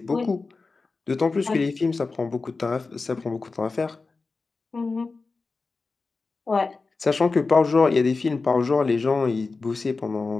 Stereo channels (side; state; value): right; quieter; 4.0 dB